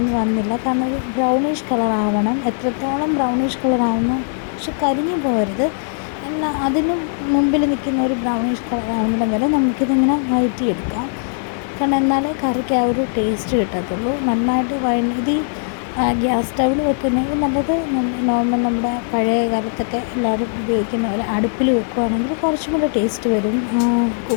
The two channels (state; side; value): silent; right; digital silence